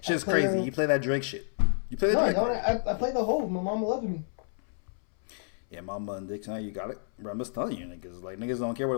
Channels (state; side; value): silent; right; 58 dB below the other